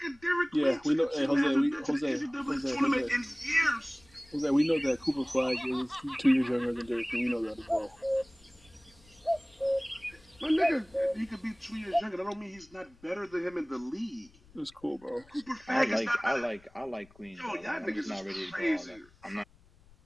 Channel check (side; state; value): left; noise; rumble, 27 dB below the sound